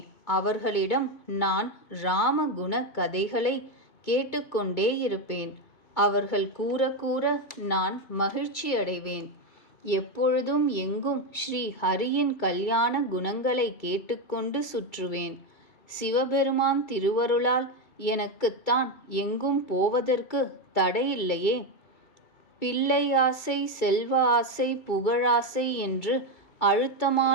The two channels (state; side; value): late; right; 2.3 ms